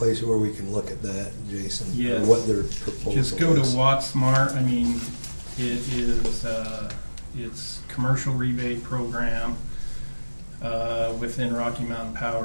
where we can look at that, Jason? or Yes. What their proposal is? Just go to WattSmart. I mean, it is, it's commercial rebate program within Rocky Mountain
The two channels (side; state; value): both; inverted; correlation -1.00